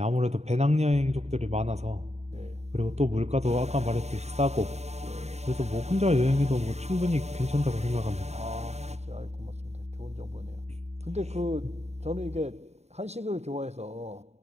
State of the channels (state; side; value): late; left; 0.32 ms